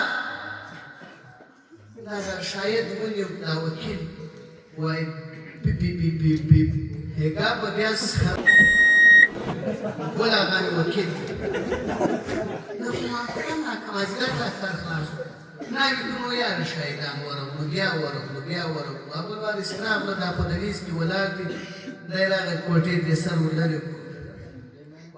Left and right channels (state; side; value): identical; both; correlation 1.00